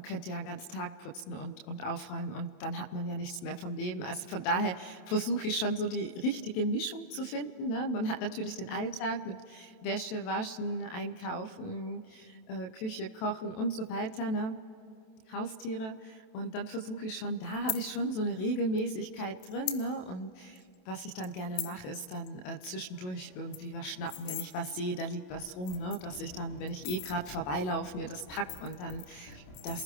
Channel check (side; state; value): right; late; 27 ms